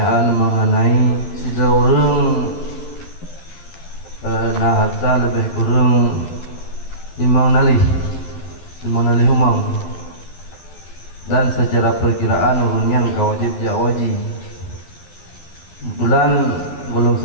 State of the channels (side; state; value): right; late; 12 ms